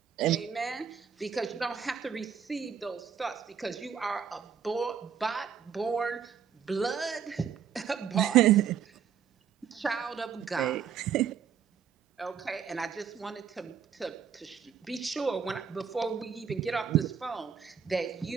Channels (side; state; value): left; quieter; 7.6 dB